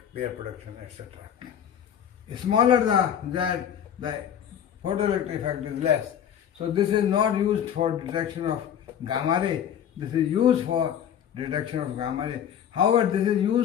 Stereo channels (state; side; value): quieter; right; 9.3 dB